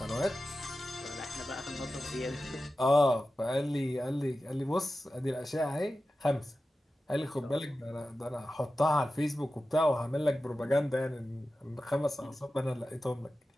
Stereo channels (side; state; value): both; normal; correlation 0.93